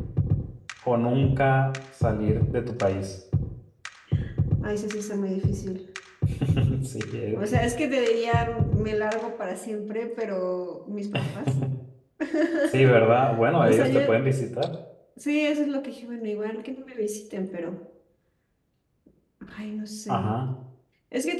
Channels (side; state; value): both; identical; correlation 1.00